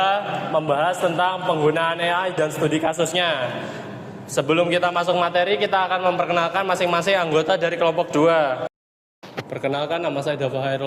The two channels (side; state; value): both; identical; correlation 1.00